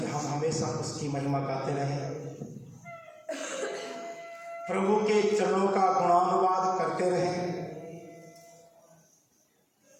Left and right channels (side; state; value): both; identical; correlation 1.00